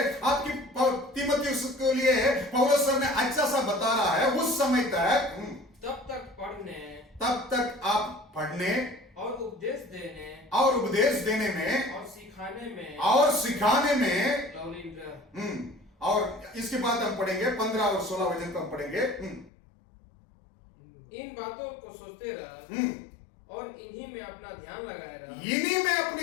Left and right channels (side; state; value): right; drops out; at 19.5 s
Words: आपकी तीमुथियुस के लिए पौलुस सर ने अच्छा सा बता रहा है। उस समय तक तब तक आप पढ़ने और उपदेश देने में और सिखाने में लवलीन रह। और इसके बाद हम पढ़ेंगे 15 और 16 वचन को हम पढ़ेंगे। इन बातों को सोचते रह, और इन्हीं में अपना ध्यान लगाए रह। इन्हीं में